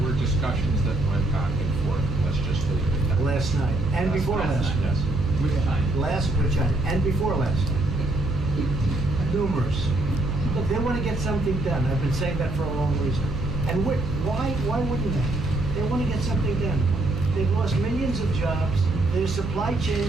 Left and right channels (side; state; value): right; noise; hum, 7 dB below the sound